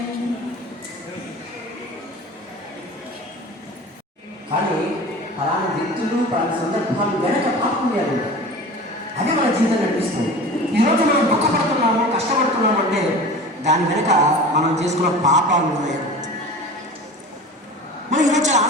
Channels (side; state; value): both; normal; correlation 0.37